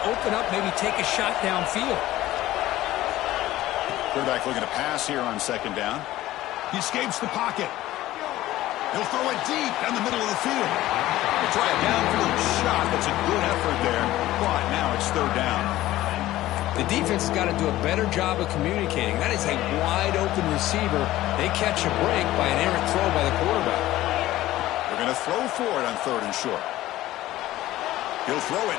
open up, maybe take a shot downfield. Quarterback looking to pass here on 2nd down. He escapes the pocket. He'll throw it deep down the middle of the field. He'll try a downfield shot. That's a good effort there, but now it's 3rd down. The defense has got to do a better job of communicating. That is a wide-open receiver. They catch a break by an errant throw by the quarterback. They're going to throw for it on 3rd and short. He'll throw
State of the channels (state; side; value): quieter; right; 15.6 dB